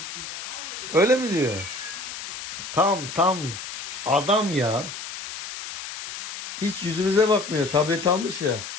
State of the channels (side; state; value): left; noise; hiss, 9 dB below the sound